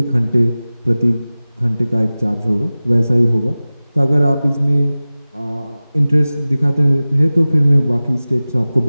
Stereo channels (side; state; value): both; inverted; correlation -0.97